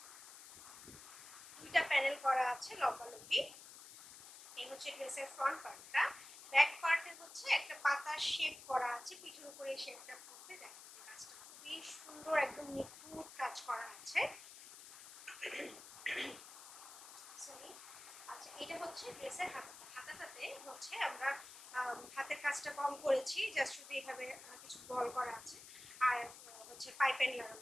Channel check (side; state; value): left; noise; hiss, 15 dB below the sound